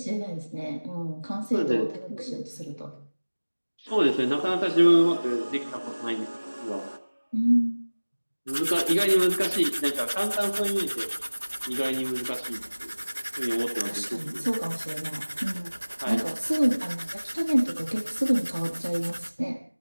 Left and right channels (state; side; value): inverted; both; correlation -1.00